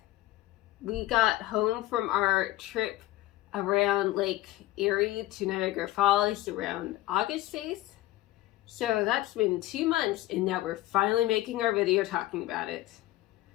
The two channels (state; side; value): quieter; right; 16.7 dB